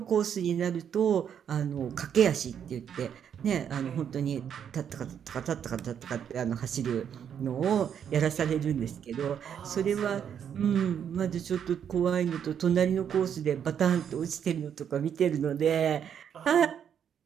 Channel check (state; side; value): quieter; left; 8.5 dB